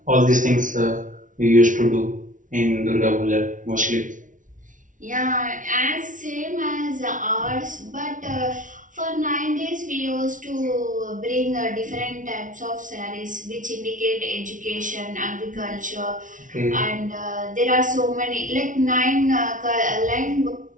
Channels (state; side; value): late; left; 0.38 ms